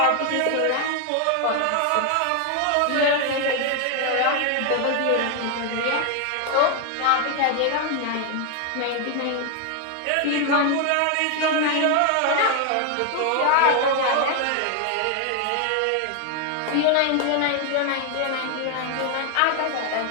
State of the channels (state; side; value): different; both; correlation 0.01